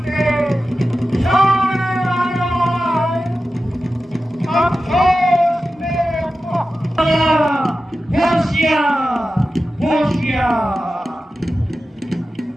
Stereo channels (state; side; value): normal; both; correlation 0.93